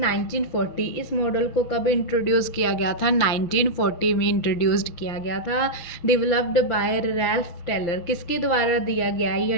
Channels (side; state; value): right; late; 5.9 ms